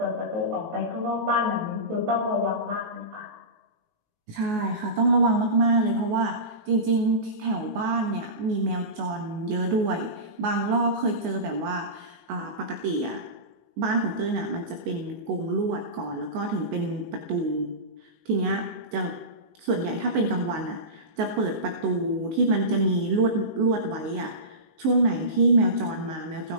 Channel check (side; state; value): left; late; 19 ms